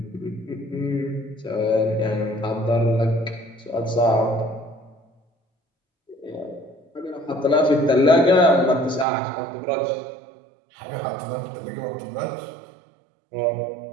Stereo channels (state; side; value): drops out; left; at 9.1 s